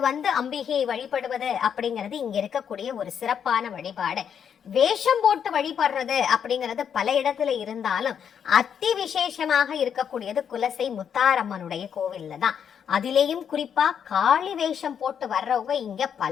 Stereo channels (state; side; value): quieter; right; 8.0 dB